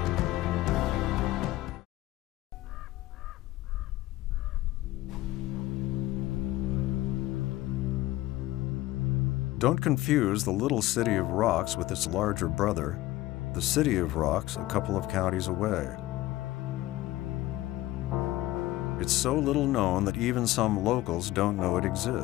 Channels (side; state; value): right; quieter; 16.7 dB